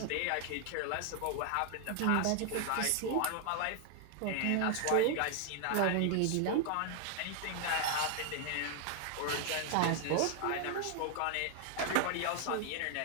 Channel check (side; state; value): both; different; correlation 0.00